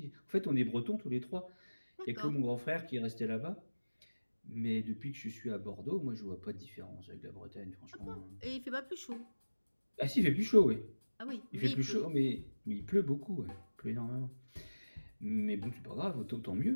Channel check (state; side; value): inverted; both; correlation -1.00